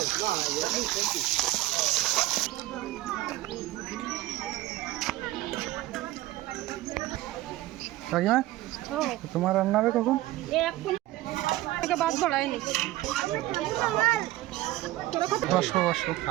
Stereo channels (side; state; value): left; quieter; 16.9 dB